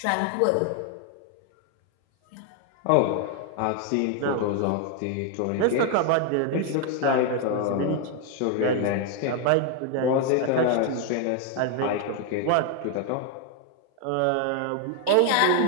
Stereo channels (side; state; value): both; different; correlation 0.01